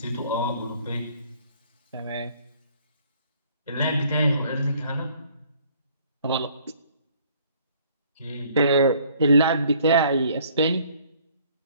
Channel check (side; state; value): both; inverted; correlation -0.59